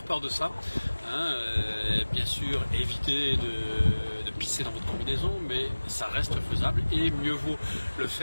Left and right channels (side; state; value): both; inverted; correlation -1.00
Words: peur de ça. Bien sûr, évitez de pisser dans votre combinaison, mais ça reste faisable et mieux vaut le